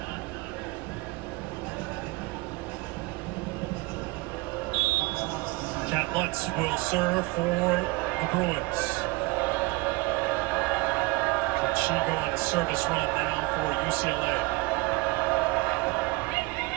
Matt Lutz will serve for the Bruins. Can she go on a service run now for UCLA?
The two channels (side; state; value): left; quieter; 24.2 dB